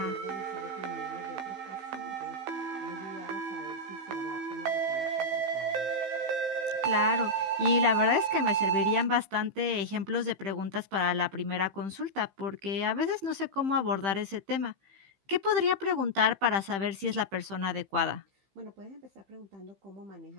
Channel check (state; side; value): late; left; 15 ms